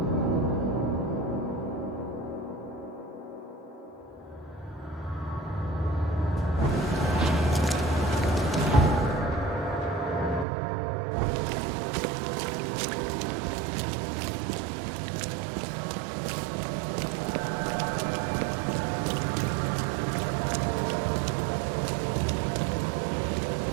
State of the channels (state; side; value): drops out; left; at 10.5 s